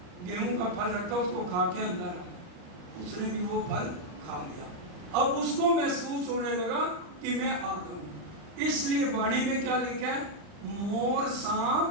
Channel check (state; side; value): late; left; 40 ms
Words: गेहूं का फल रखा, उसको खा के अंदर आया। उसने भी वो फल खा लिया। अब उसको महसूस होने लगा कि मैं आदम हूं। इसलिए वाणी में क्या लिखा है? मोर